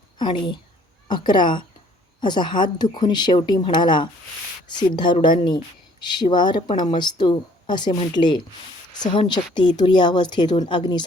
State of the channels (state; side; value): normal; both; correlation 0.59